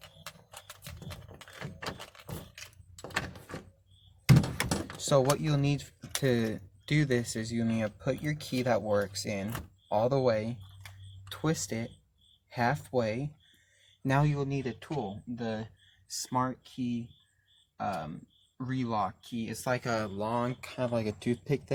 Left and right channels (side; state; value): both; identical; correlation 1.00